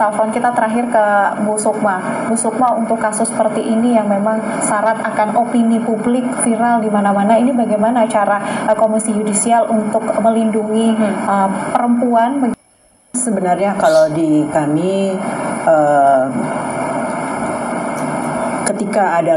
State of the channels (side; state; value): both; identical; correlation 1.00